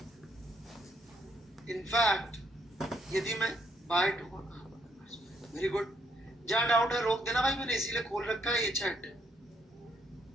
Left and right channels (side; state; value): both; normal; correlation 0.72